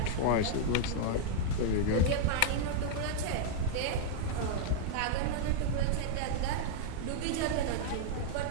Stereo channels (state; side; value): different; both; correlation -0.01